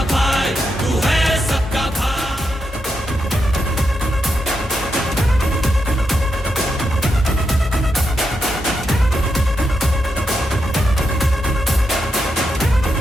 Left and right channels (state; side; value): normal; both; correlation 0.84